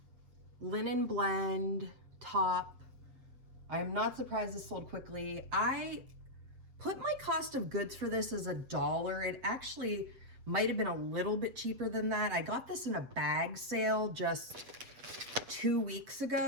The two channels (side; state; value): left; late; 7.8 ms